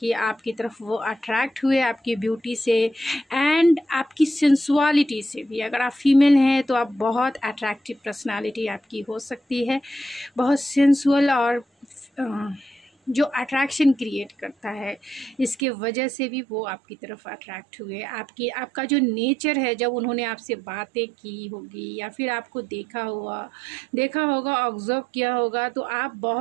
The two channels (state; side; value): drops out; left; at 15.6 s